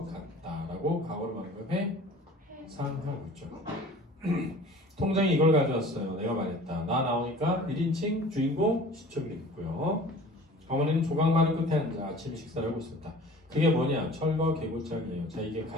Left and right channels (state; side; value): normal; both; correlation 0.45